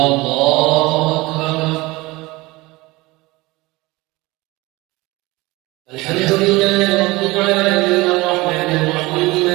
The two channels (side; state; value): left; quieter; 21.6 dB